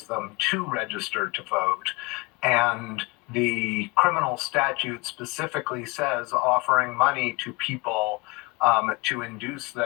them to register to vote. And the criminal statute specifically says offering money to people to induce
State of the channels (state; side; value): quieter; right; 26.1 dB